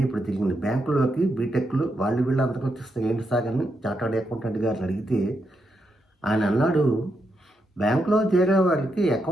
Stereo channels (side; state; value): both; normal; correlation 0.82